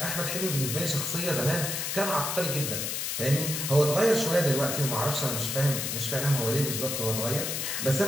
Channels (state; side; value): noise; left; hiss, 2 dB below the sound